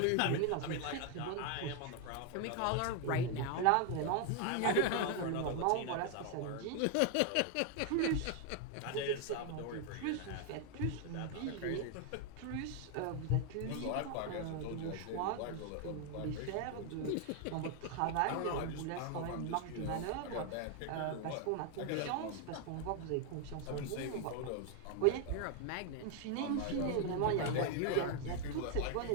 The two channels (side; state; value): both; different; correlation 0.01